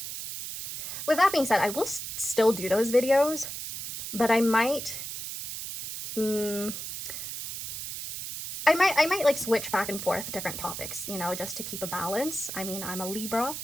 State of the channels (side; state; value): right; noise; hiss, 7 dB below the sound